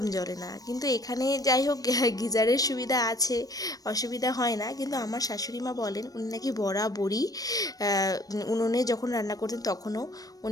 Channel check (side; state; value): right; late; 0.18 ms